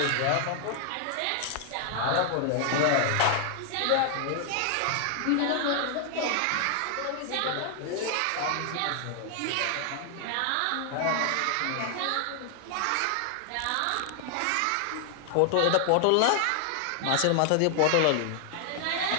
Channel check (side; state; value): both; different; correlation 0.00